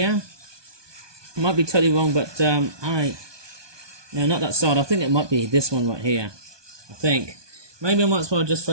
I might be totally wrong, but no, not that side. I think it might be this one right here. I think maybe I might as well just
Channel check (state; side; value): late; left; 1.2 ms